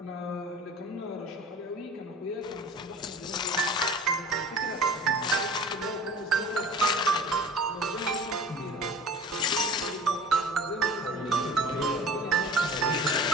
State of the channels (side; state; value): both; normal; correlation 0.41